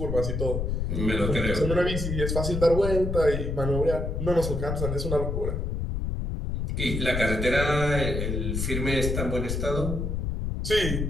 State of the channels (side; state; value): left; noise; rumble, 2 dB below the sound